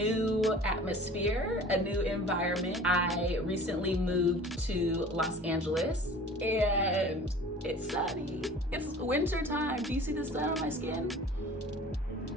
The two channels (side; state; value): both; normal; correlation 0.44